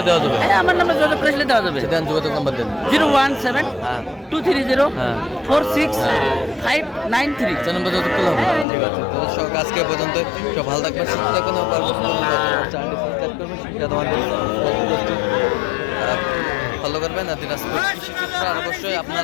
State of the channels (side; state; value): right; drops out; at 8.7 s